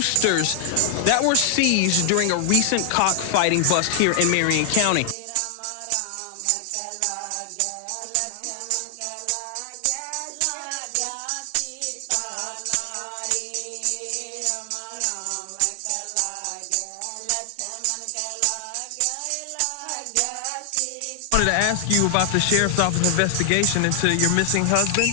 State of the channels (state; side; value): different; both; correlation 0.00